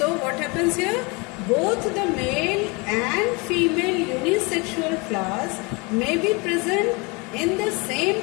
what happens here? Both the male and female unisexual flowers may be present in the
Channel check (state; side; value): quieter; right; 28.5 dB